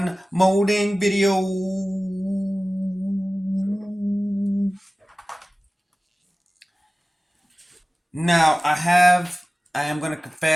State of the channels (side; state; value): both; normal; correlation 0.97